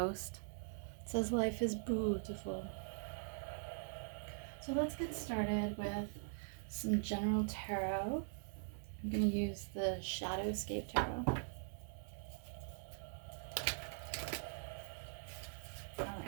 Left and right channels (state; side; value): silent; left; digital silence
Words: It says life is beautiful. So let's get started with some general tarot. I'm going to use the Shadowscape Tarot.